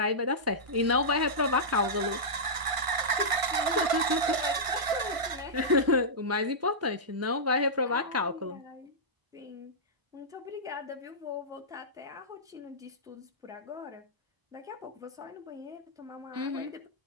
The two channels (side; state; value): left; late; 1.5 ms